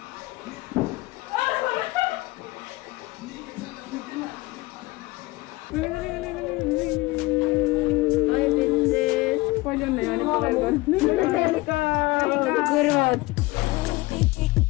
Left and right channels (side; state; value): right; quieter; 21.4 dB